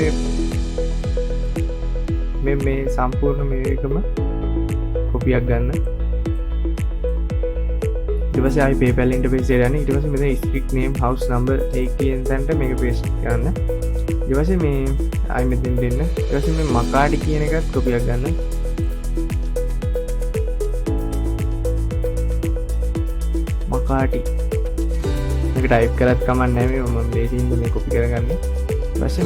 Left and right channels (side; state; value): both; identical; correlation 1.00